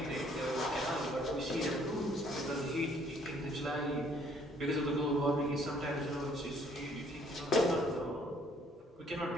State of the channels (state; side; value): normal; both; correlation 0.62